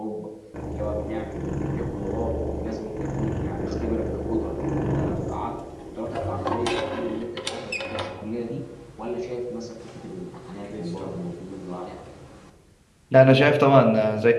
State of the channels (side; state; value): both; identical; correlation 1.00